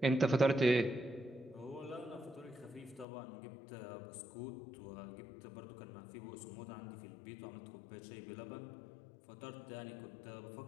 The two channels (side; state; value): right; drops out; at 3.1 s